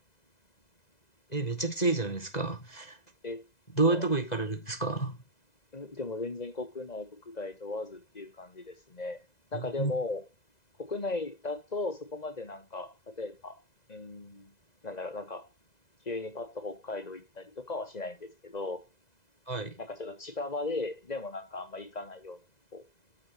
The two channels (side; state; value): right; late; 2.0 ms